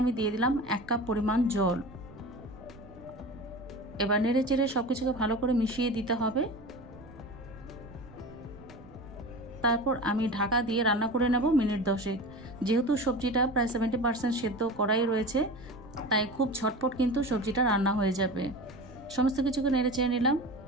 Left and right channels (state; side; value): noise; right; rumble, 21 dB below the sound